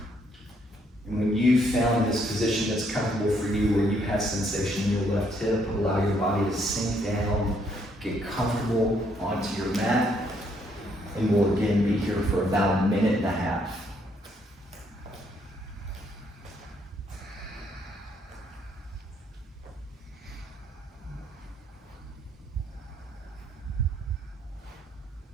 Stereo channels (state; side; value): normal; both; correlation 0.70